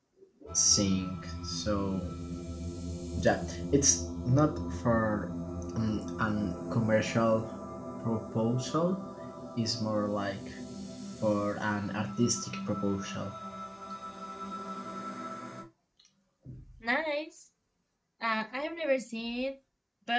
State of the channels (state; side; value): identical; both; correlation 1.00